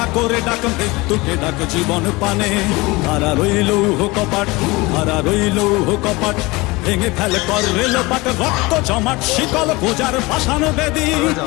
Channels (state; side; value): quieter; right; 23.1 dB